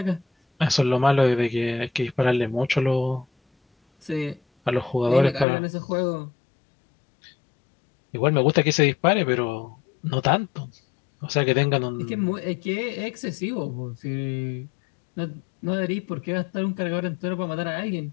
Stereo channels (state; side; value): drops out; right; at 5.5 s